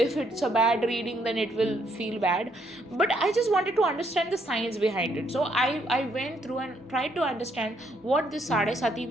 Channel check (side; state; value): both; normal; correlation 0.72